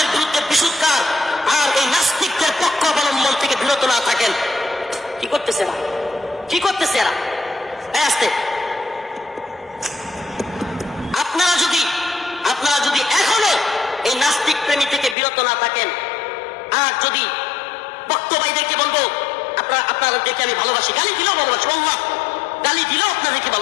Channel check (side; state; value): right; drops out; at 15.2 s